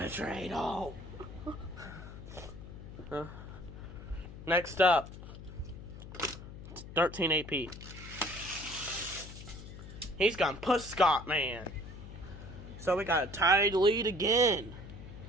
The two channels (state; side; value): noise; left; hum, 13 dB below the sound